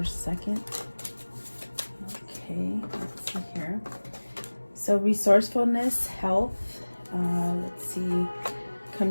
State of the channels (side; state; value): both; inverted; correlation -1.00